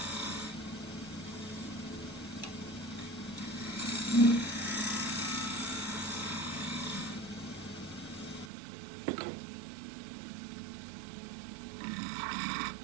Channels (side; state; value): left; drops out; at 8.5 s